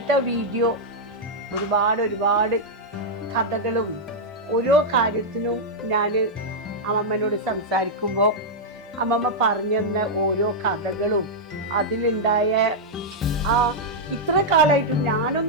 വീഡിയോ ഒരുപാട് കഥകളും ഓരോ കാര്യത്തിനും ഞാൻ അമ്മമ്മനോട് സംസാരിക്കുമ്പോൾ അമ്മമ്മ പറഞ്ഞു തന്ന ഓരോ കഥകളും അതിലുണ്ടായ ഇത്ര കാലമായിട്ടും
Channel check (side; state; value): both; normal; correlation -0.05